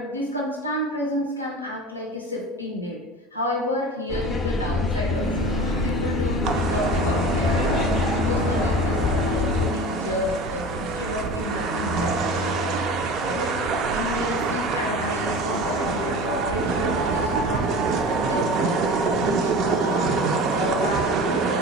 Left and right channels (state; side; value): normal; both; correlation 0.35